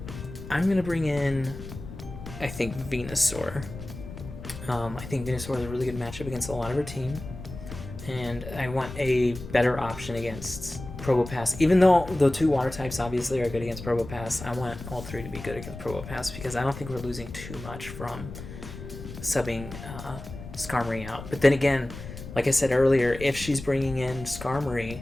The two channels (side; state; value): left; noise; rumble, 12 dB below the sound